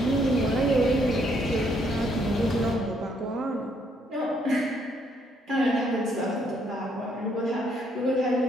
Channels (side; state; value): both; normal; correlation 0.70